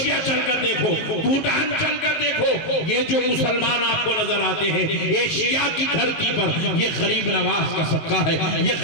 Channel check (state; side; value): late; right; 19 ms